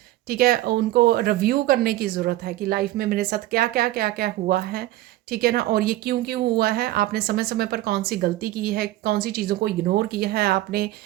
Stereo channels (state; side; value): quieter; left; 15.9 dB